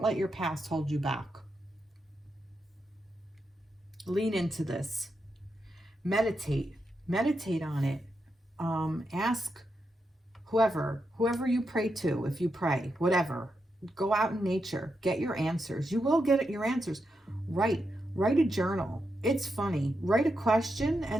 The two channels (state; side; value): normal; both; correlation 0.85